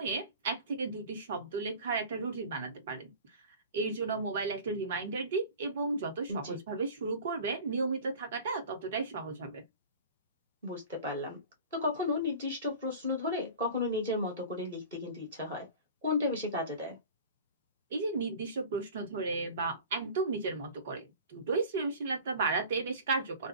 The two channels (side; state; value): both; inverted; correlation -0.39